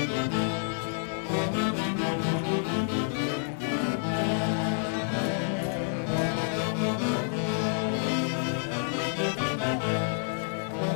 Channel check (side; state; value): right; silent; 59 dB below the other